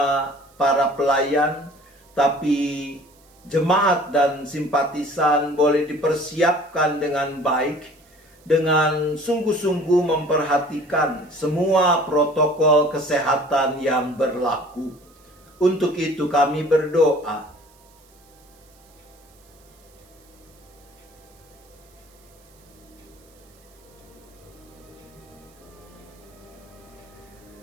para pelayan, tapi jemaat dan simpatisan boleh dipersiapkan dengan baik, dengan sungguh-sungguh memperhatikan semua protokol kesehatan yang berlaku. Untuk itu kami berdoa.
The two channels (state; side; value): noise; right; hiss, 30 dB below the sound